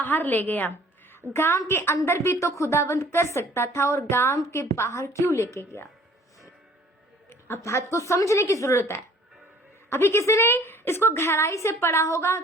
ले गया। गांव के अंदर भी तो खुदावंद कर सकता था, और गांव के बाहर क्यों लेके गया? अब बात को समझने की जरूरत है। अभी किसी ने इसको गहराई से पढ़ा होगा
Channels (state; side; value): normal; both; correlation 0.54